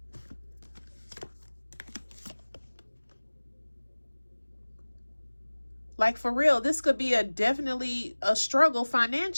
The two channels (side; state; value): both; inverted; correlation -1.00